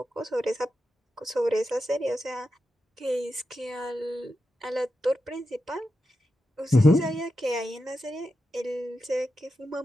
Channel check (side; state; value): both; normal; correlation 0.89